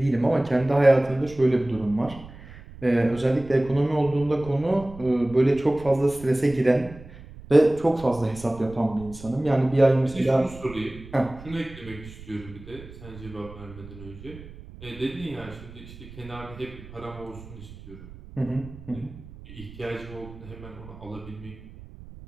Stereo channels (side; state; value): right; noise; rumble, 17 dB below the sound